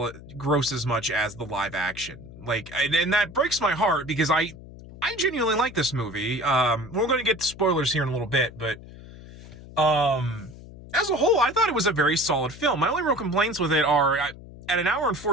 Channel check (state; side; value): noise; left; hum, 17 dB below the sound